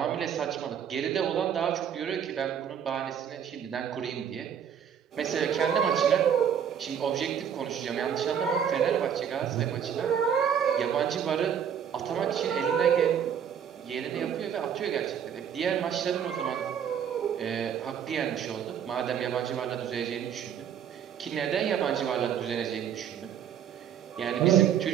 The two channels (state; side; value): quieter; left; 8.4 dB